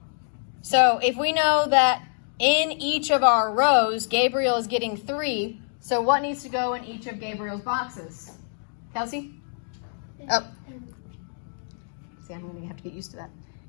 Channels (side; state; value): right; silent; 60 dB below the other